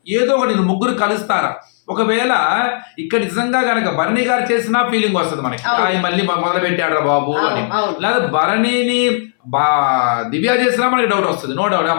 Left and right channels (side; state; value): right; silent; 63 dB below the other